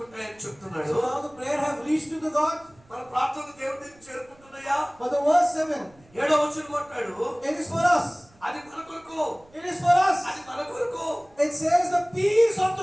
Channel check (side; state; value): right; noise; rumble, 29 dB below the sound